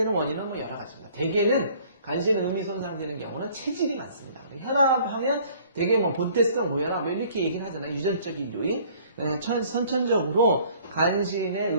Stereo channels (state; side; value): inverted; both; correlation -0.56